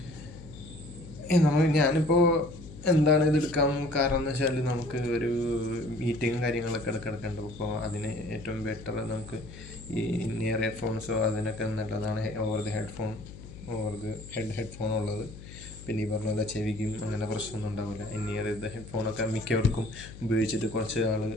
ഞാനിപ്പോൾ എന്താണ് ഇത് എടുക്കാൻ കാരണം എന്ന് വെച്ചാൽ, നമുക്ക് ഒരു മീറ്റിങ്ങും കാര്യങ്ങളൊക്കെ എടുക്കേണ്ടത്. അപ്പോൾ അതിന് ഏറ്റവും ബെറ്റർ നമുക്ക് ഈ നിയർ ഹെഡ്ഫോൺസോ അതിനൊക്കെ നല്ലതാണ് ഓവർ ദി ഹെഡ്ഫോൺ ഉള്ളത്. പിന്നെ ഈ പറഞ്ഞ പോലെ ചെവിക്കും അങ്ങനെ പ്രശ്നമൊന്നും ഉണ്ടാവില്ല. നിയർ ദ ഹെഡ്ഫോണൊക്കെ മിക്കവർക്കും ഉപയോഗിച്ചിട്ട് കുറച്ച് നാൾ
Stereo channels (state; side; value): noise; left; hum, 15 dB below the sound